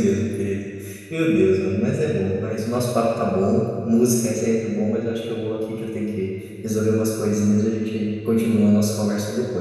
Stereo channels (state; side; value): identical; both; correlation 1.00